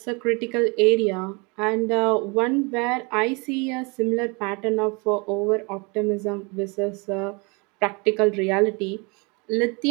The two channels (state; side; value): quieter; left; 30.0 dB